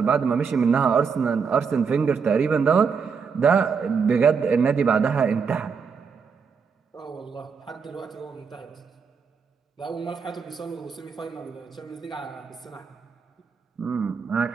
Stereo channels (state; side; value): quieter; left; 5.8 dB